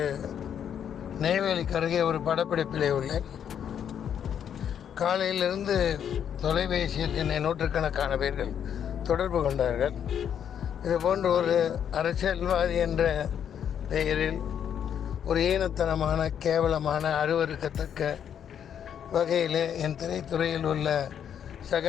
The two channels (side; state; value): right; quieter; 8.8 dB